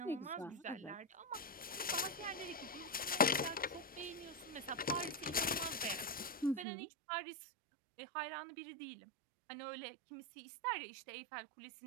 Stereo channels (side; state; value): left; drops out; at 6.7 s